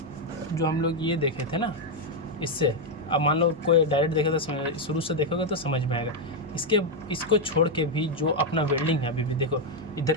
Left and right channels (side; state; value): both; normal; correlation 0.03